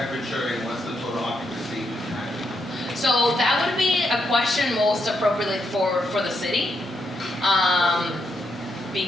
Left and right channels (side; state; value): both; normal; correlation 0.80